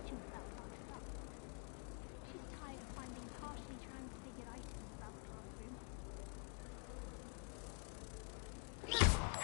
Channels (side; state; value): right; quieter; 39.2 dB